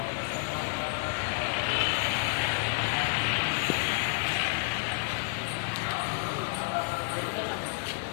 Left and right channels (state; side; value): silent; right; digital silence